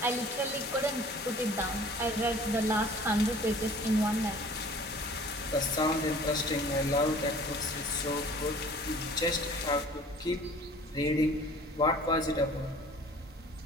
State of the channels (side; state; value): both; normal; correlation 0.49